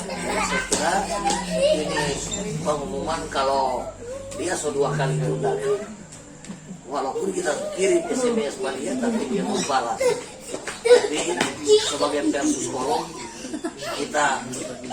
saya kira ini pengumuman kalau dia sudah 2 kali tunda. Walaupun kita kirim SMS pada dia, tapi dia mau balas. Jadi sebagai versus kolom kita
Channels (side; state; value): both; identical; correlation 1.00